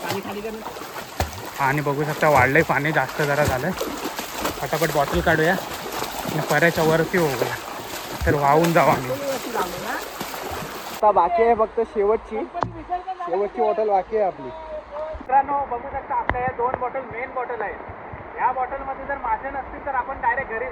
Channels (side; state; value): both; identical; correlation 1.00